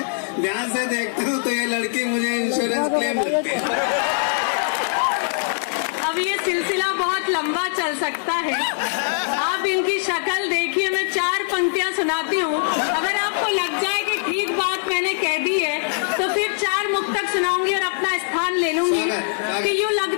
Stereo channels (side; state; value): right; silent; digital silence